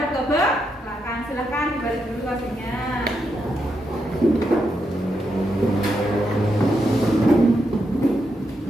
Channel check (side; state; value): both; normal; correlation 0.83